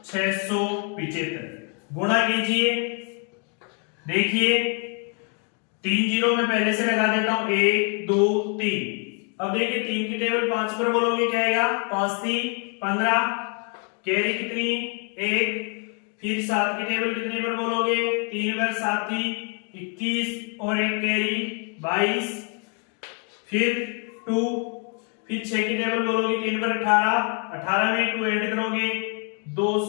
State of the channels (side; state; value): right; quieter; 38.3 dB